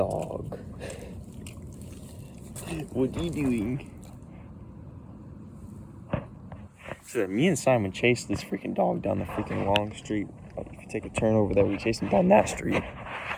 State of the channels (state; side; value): identical; both; correlation 1.00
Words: What are you doing? So me and Simon chased this freaking dog down the freaking long street. Like, if you take a turn over there, we chased him down that street.